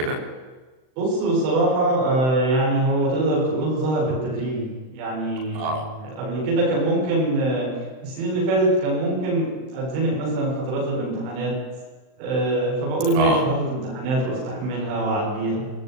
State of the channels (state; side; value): late; left; 39 ms